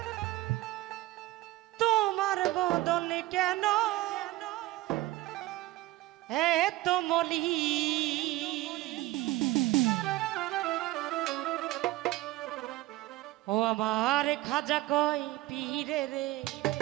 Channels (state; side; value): quieter; left; 18.0 dB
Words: তোমার বদন কেন এত মলি ও আমার খাজা কই পীরে রে